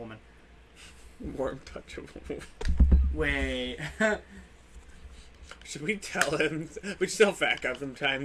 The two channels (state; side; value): identical; both; correlation 1.00